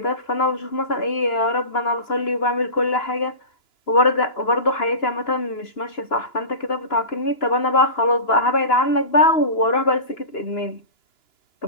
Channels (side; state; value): right; late; 2.9 ms